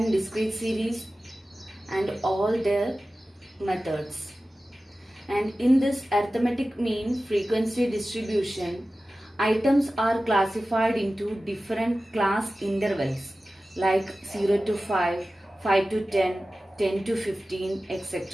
discrete series and all their methods. And in this arithmetic mean frequency distribution, items are classified into different class intervals like 0 to 5, 5 to 10, 10 to 15,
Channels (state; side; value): normal; both; correlation 0.95